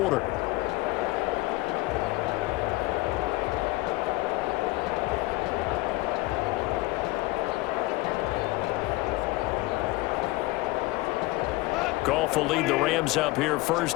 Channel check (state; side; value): quieter; right; 20.7 dB